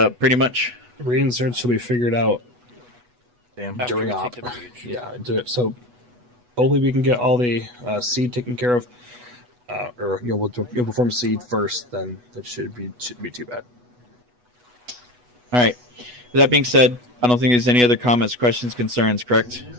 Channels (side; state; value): left; late; 8.2 ms